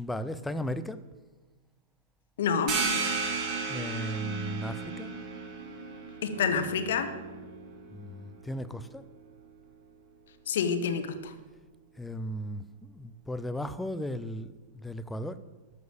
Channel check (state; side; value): normal; both; correlation -0.04